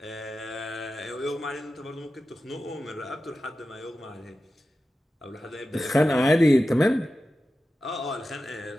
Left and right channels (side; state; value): both; normal; correlation 0.93